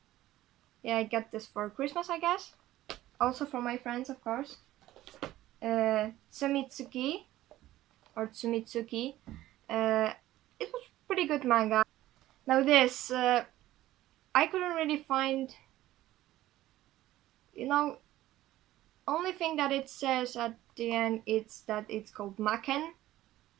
Yeah, I got this for Christmas, I guess. Also for my friends, of course. Tsumitsuki, or Tsumitsuki. It was pretty good manga. Now this, I couldn't really find, only thing that it says at the end is that it's called Maken,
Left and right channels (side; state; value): left; quieter; 15.1 dB